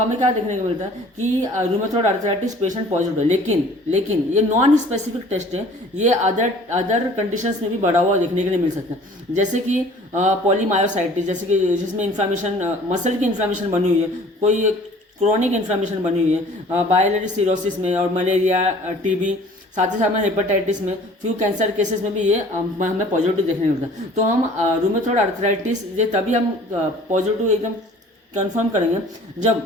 क्या देखने को मिलता है कि रूमेटॉइड अर्थराइटिस पेशेंट पॉजिटिव है। लेकिन ये नॉन स्पेसिफिक टेस्ट है, ये अदर कंडीशंस में भी बढ़ा हुआ देखने के लिए मिल सकता है, जैसे कि पॉलीमायोसाइटिस, जैसे कि जिसमें इन्फ्लामेशन, मसल की इन्फ्लामेशन बनी हुई है, कोई क्रोनिक इन्फ्लामेशन बनी हुई है, बायलरी सिरोसिस में, और मलेरिया, टीबी, साथ ही साथ में हेपेटाइटिस में, फ्यू कैंसर केसेस में भी ये हमें पॉजिटिव देखने को मिलता है। तो हम रूमेटॉइड अर्थराइटिस ये तभी हम पॉजिटिव एकदम कंफर्म करेंगे जब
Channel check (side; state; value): both; normal; correlation 0.50